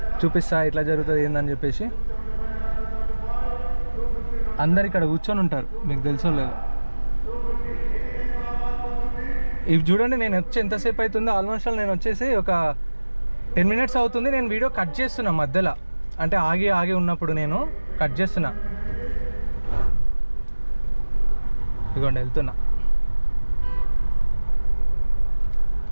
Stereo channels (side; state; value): both; inverted; correlation -1.00